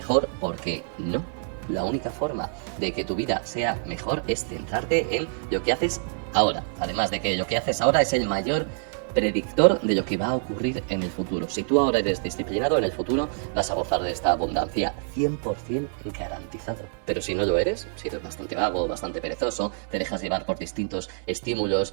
porque no. La única forma de que tu vida sea mejor es centrarte en lo que haces ahora. Además de que lo que haces ahora es el mayor predictor de lo que va a ocurrir en el futuro. Si tú ahora eres disciplinado, en el futuro vas a gozar de esta abundancia 100% garantizado. Pero si no lo eres, si eres bastante vago, bastante perezoso, te dejas llevar por distintos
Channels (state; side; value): silent; left; digital silence